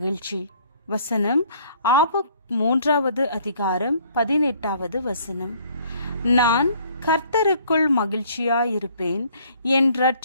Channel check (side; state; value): both; inverted; correlation -0.59